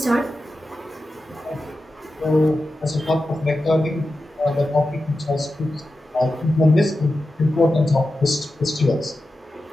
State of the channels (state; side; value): normal; both; correlation 0.92